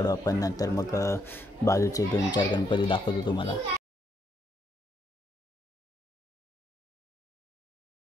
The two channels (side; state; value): both; normal; correlation 0.76